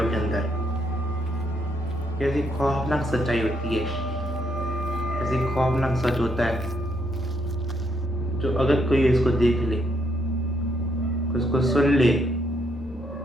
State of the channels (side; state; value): both; normal; correlation 0.75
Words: के अंदर कैसी खौफनाक सच्चाई होती है, ऐसी खौफनाक सच होता है जो अगर कोई इसको देख ले, उसको सुन ले,